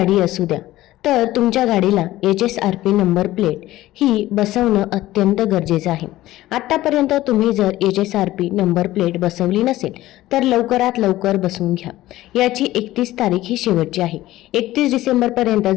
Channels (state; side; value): quieter; right; 15.9 dB